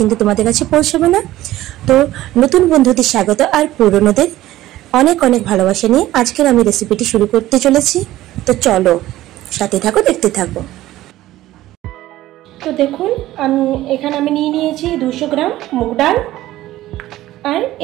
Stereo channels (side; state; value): left; quieter; 15.4 dB